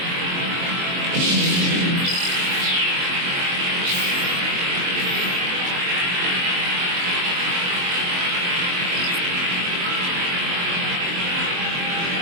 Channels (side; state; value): left; late; 22 ms